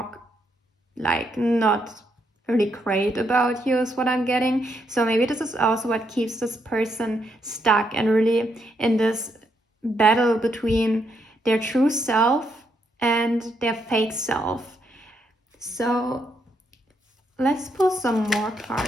like not really great about you is what I'm getting. So maybe this is also what keeps this person stuck and really in this battle between their true self and their fake self. So let's pull some more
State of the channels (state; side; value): normal; both; correlation 0.77